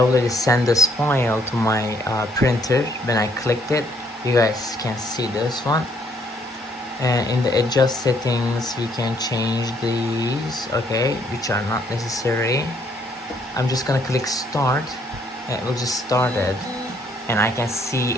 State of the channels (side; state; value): both; normal; correlation 0.67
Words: sent this file to my printer. When I clicked it, you guys can see this one. And in the adjust settings, we can change these, okay, which are not necessary. I'm just gonna click start, and it will just start it, and I can see